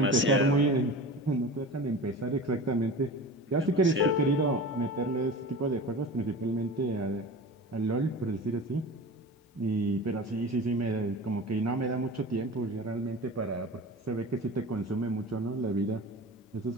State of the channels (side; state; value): both; normal; correlation 0.34